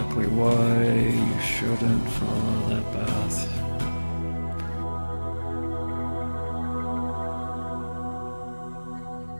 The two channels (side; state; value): both; inverted; correlation -1.00